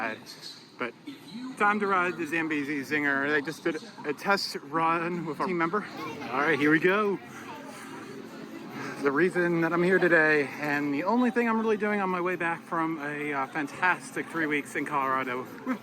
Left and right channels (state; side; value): identical; both; correlation 1.00